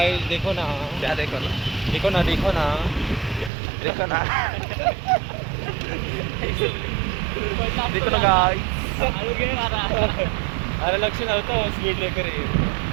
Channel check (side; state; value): left; drops out; at 3.5 s